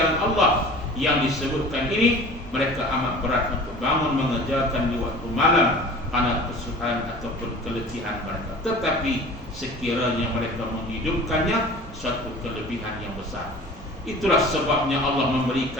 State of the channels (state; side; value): normal; both; correlation 0.42